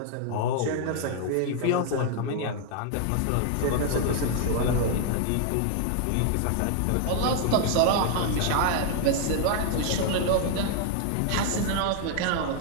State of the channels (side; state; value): both; different; correlation 0.00